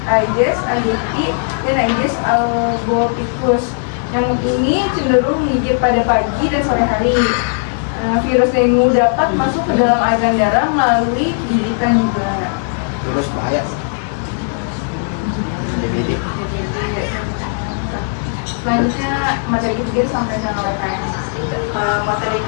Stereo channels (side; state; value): right; silent; digital silence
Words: Aedes aegypti dan Aedes albopictus. Nyamuk ini cenderung menggigit pada pagi dan sore hari. Virus dengue dapat masuk ke dalam aliran darah melalui gigitan juga. Terus bahaya. Selanjutnya materi ketiga disampaikan oleh KM. Materi